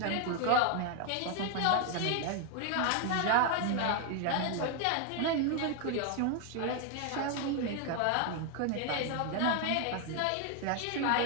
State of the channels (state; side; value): different; both; correlation 0.01